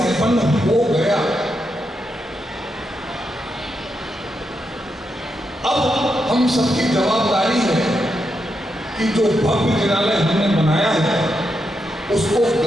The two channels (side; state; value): both; normal; correlation 0.84